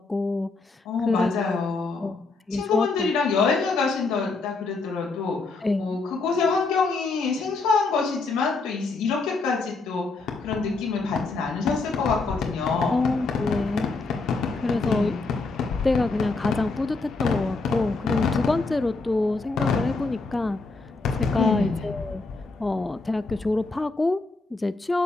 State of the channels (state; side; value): quieter; right; 3.7 dB